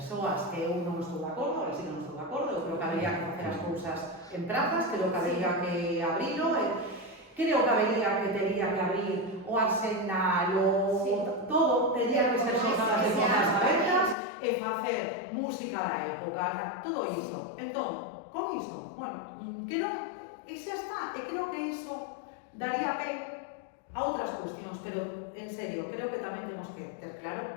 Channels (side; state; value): right; drops out; at 14.2 s